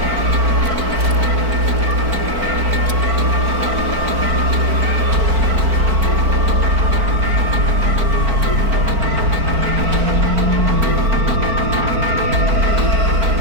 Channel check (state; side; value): late; left; 4.4 ms